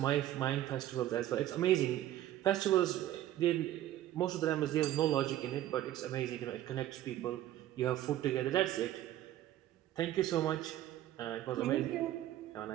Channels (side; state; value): left; quieter; 13.2 dB